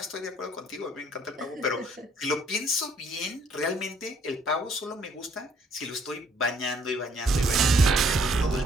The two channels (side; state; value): both; normal; correlation 0.64